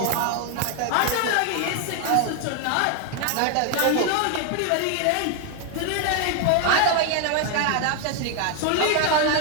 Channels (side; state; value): both; different; correlation 0.01